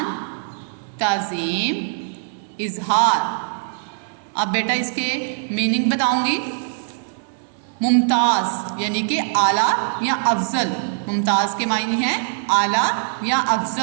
تعظیم، اظہار۔ اب بیٹا اس کے میننگ بتاؤں گی۔ ممتاز یعنی کہ اعلیٰ یا افضل۔ ممتاز کے معنی ہیں اعلیٰ یا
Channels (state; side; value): silent; left; digital silence